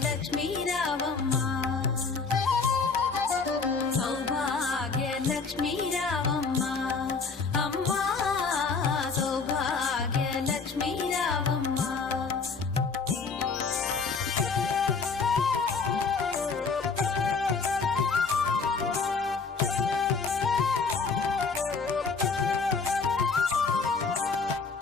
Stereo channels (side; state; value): right; quieter; 4.8 dB